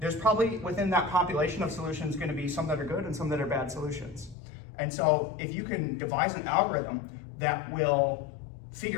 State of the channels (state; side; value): drops out; right; at 4.4 s